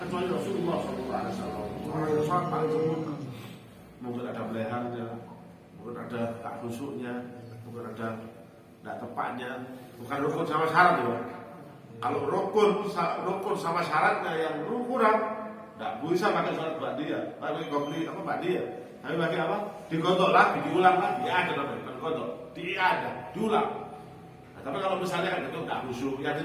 Rasulullah SAW. Orang yang sholat paling sempurna, mungkin ada beleharnya, mungkin ada tak khusyuknya, mungkin ada tidak tepatnya, bukan rukun sama syarat ya. Kalau rukun sama syaratnya yang kurang, tidak bisa pakai sholat ba'diyah, pakai qobliyah apa ba'diyah. Tapi bagi apa? Digodok lagi, diulang lagi. Ya ada namanya, digodok, diulang. Nah, tapi kalau misalnya itu tidak khusyuk, yang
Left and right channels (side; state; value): both; identical; correlation 1.00